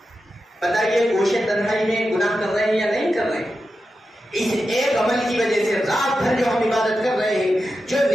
بتائیے گوشہ تنہائی میں گناہ کر رہے ہیں یا نہیں کر رہے ہیں؟ اس ایک عمل کی وجہ سے رات بھر جو ہم عبادت کر رہے ہیں، جو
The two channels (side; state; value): both; normal; correlation 0.90